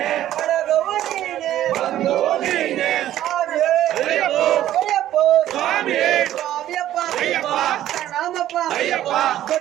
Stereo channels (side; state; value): left; quieter; 12.7 dB